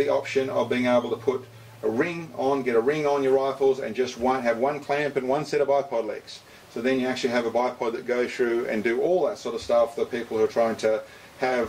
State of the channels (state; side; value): identical; both; correlation 1.00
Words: option of being able to put a ring on, get a ring on your rifles, and just have one clamp and one set of bipod legs. So then you actually have a bipod that goes through and do all that sort of stuff for people who are trying to have